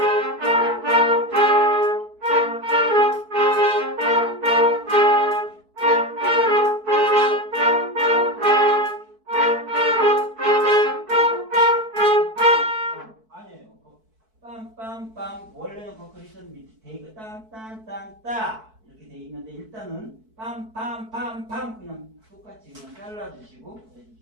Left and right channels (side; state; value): left; late; 4.6 ms